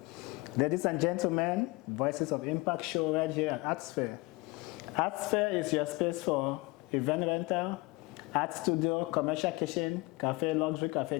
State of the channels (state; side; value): quieter; right; 24.2 dB